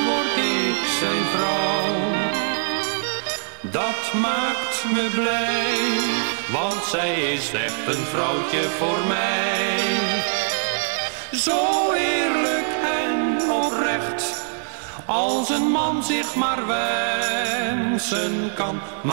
word ik zijn vrouw. Dat maakt me blij, want zij is echt een vrouwtje voor mij. Zo eerlijk en oprecht, als een man zich maar wensen kan.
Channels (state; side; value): silent; left; digital silence